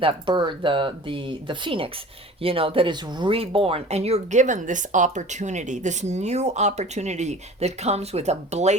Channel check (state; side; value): normal; both; correlation 0.42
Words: bird, the phoenix, you know, that is reborn. And you're given this opportunity, this new opportunity that comes with a